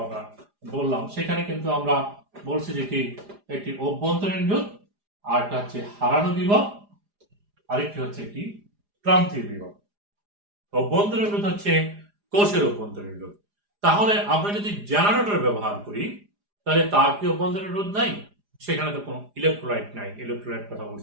আমরা বললাম সেখানে কিন্তু আমরা বলছি যে কি একটি অভ্যন্তরীণ রোধ, আর একটা হচ্ছে হারানো বিভব, আরেকটি হচ্ছে কি প্রান্তীয় বিভব। অভ্যন্তরীণ রোধ হচ্ছে কোষের অভ্যন্তরীণ রোধ। তাহলে আমরা যদি জেনারেটর ব্যবহার করি তাহলে তার কি অভ্যন্তরীণ রোধ নাই? সেখানে তো কোনো ইলেকট্রোলাইট নাই। ইলেকট্রোলাইট কথা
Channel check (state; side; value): late; left; 4.9 ms